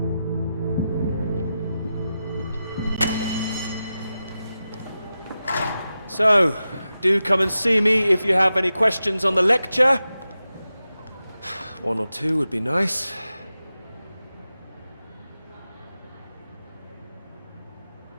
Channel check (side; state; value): both; inverted; correlation -0.92